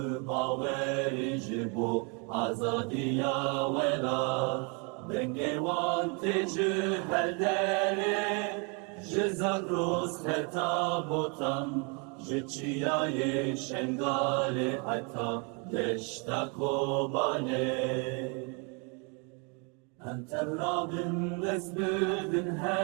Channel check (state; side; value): quieter; left; 34.4 dB